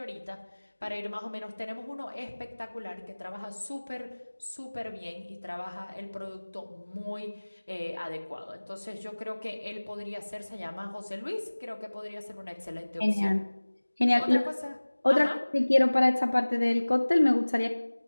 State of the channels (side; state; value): both; inverted; correlation -1.00